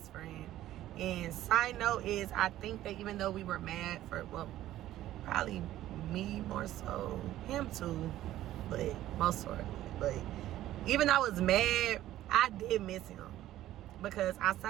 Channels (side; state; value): left; quieter; 13.9 dB